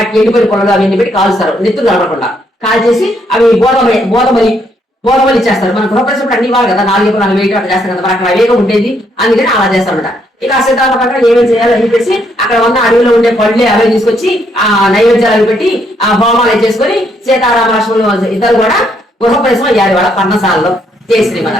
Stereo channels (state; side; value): normal; both; correlation 0.73